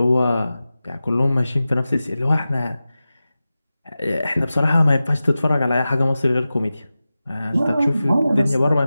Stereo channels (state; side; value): inverted; both; correlation -0.95